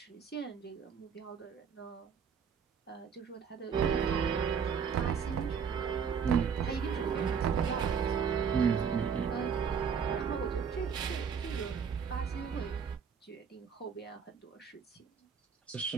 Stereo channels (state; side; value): quieter; left; 6.8 dB